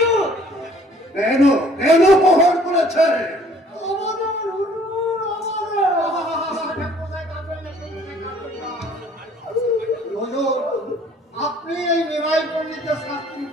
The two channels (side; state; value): both; normal; correlation 0.57